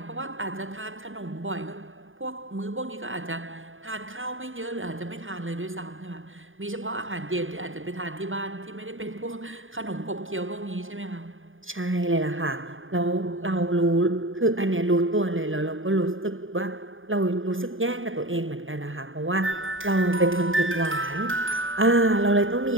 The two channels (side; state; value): left; late; 0.58 ms